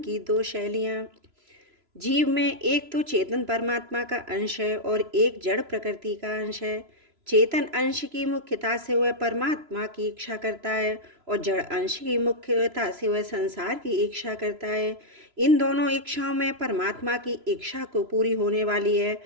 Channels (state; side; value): late; left; 3.0 ms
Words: दो शैलियाँ। जीव में एक तो चेतन परमात्मा का अंश है और एक जड़ प्रकृति का अंश है। चेतन अंश की मुख्यता से वह परमात्मा की इच्छा करता है और जड़ अंश की मुख्यता से वह संसार की इच्छा करता है। इन दोनों इच्छाओं में परमात्मा की इच्छा को पूरी होने वाली है,